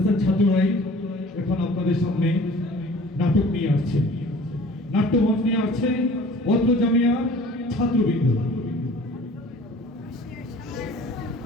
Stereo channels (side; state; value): both; normal; correlation 0.47